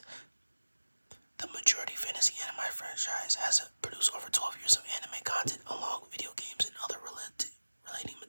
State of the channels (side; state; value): both; inverted; correlation -1.00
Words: The majority fantasy anime franchise has produced over 12 years of anime content along with video games and other relating